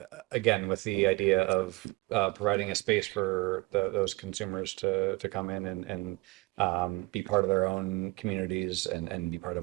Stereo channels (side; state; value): left; quieter; 23.0 dB